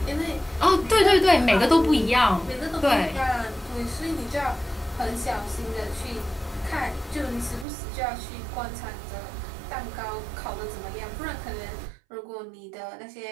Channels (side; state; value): left; drops out; at 7.7 s